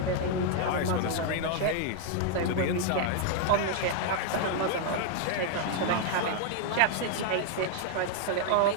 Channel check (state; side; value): different; both; correlation 0.00